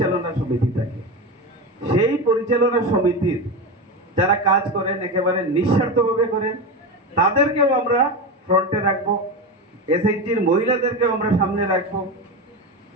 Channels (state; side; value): normal; both; correlation 0.20